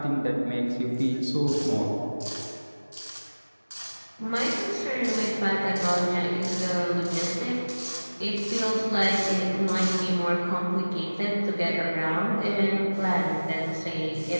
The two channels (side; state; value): both; inverted; correlation -1.00